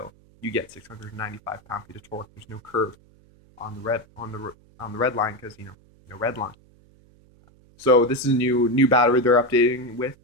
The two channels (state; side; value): noise; right; hum, 29 dB below the sound